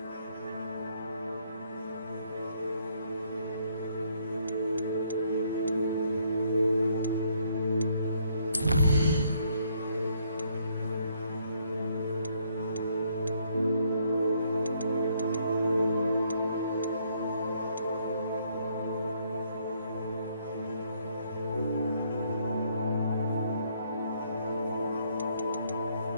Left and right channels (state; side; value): inverted; both; correlation -0.69